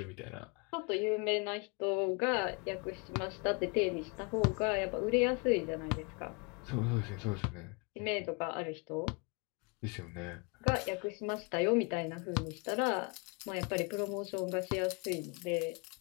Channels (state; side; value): quieter; right; 32.3 dB